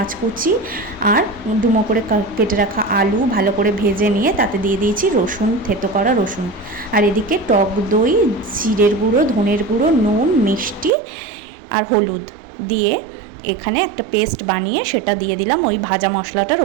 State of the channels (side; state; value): left; drops out; at 10.9 s